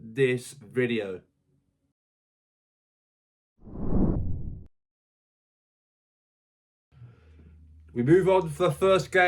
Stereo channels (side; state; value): both; identical; correlation 1.00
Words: this video. We move on for the first